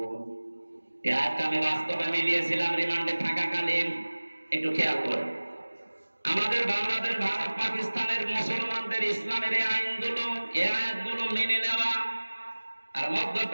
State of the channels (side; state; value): both; inverted; correlation -1.00